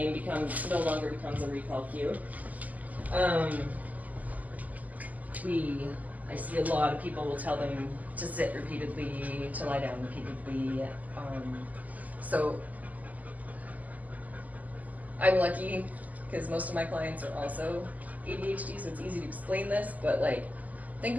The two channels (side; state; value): left; late; 0.078 ms